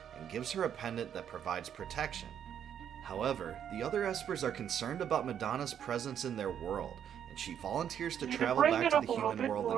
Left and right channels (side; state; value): left; quieter; 9.1 dB